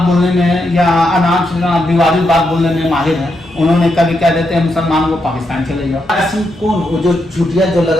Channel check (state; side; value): normal; both; correlation 0.82